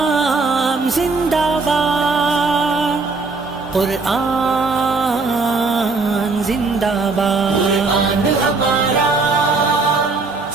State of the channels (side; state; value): left; quieter; 3.9 dB